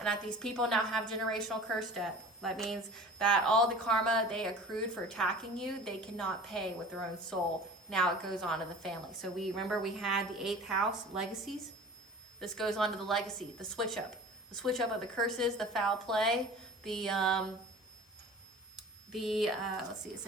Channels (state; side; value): normal; both; correlation 0.41